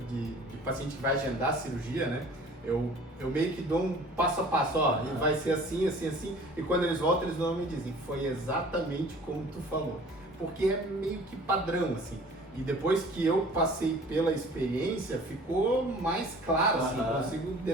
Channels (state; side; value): normal; both; correlation 0.48